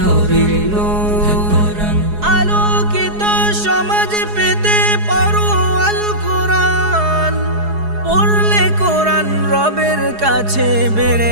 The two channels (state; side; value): late; left; 4.7 ms